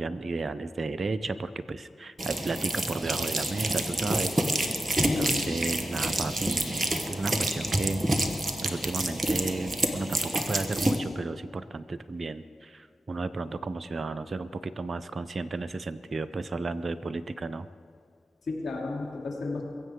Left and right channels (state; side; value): normal; both; correlation 0.91